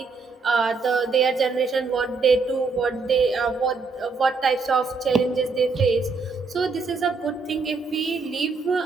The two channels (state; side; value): quieter; left; 4.4 dB